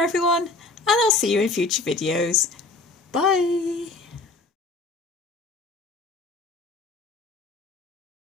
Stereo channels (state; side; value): quieter; right; 3.5 dB